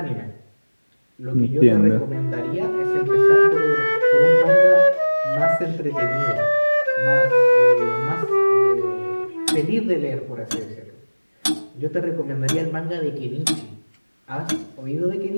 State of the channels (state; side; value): inverted; both; correlation -1.00